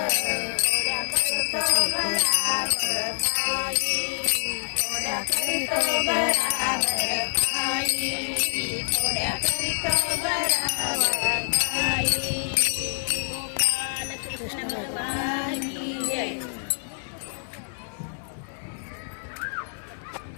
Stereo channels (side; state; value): right; silent; digital silence